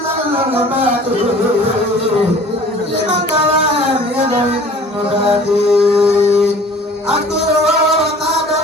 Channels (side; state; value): both; normal; correlation 0.48